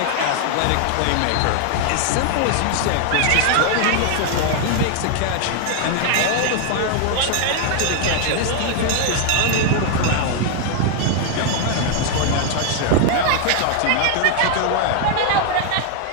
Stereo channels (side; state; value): both; different; correlation 0.00